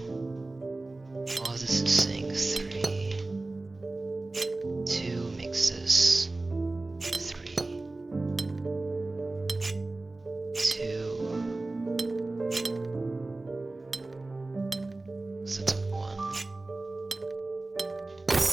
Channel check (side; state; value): left; quieter; 3.1 dB